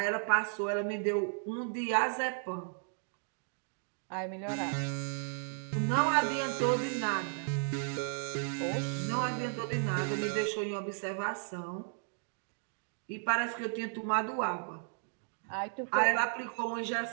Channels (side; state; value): left; silent; 55 dB below the other